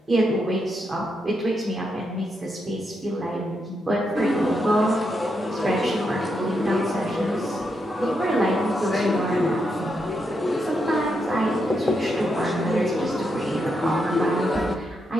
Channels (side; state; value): both; normal; correlation 0.82